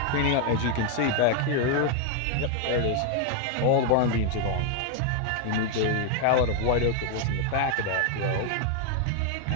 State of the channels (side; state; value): both; different; correlation 0.01